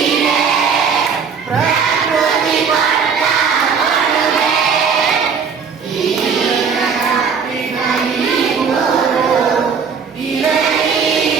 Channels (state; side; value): quieter; left; 6.0 dB